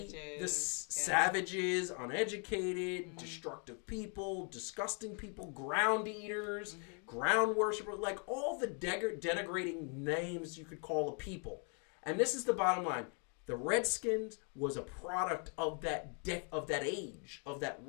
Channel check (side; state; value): right; quieter; 39.3 dB